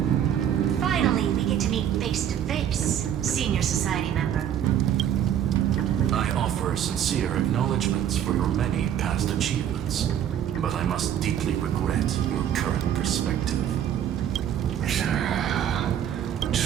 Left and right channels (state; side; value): quieter; left; 10.0 dB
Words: offer sincere acknowledgments for your many past achievements, but I must deeply regret your current perspective.